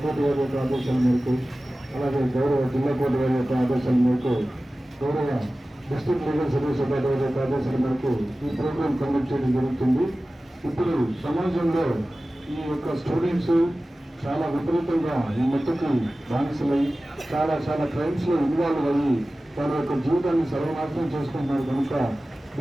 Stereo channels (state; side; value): normal; both; correlation 0.96